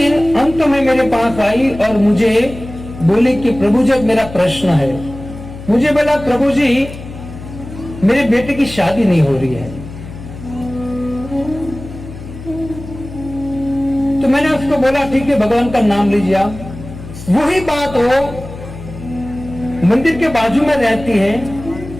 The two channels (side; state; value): left; noise; hum, 13 dB below the sound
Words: अंत में मेरे पास आई और मुझे बोली कि प्रभु जी मेरा प्रश्न है। मुझे बोला प्रभु जी मेरे बेटे की शादी नहीं हो रही है। तो मैंने उसको बोला ठीक है, भगवान का नाम लीजिए आप। वही बात वो मंदिर के बाजू में रहती है,